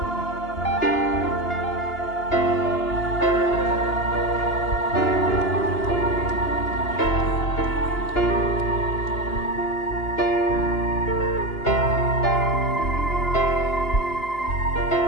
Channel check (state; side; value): late; right; 2.9 ms